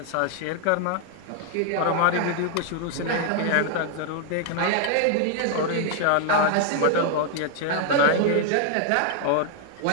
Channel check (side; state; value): both; different; correlation 0.00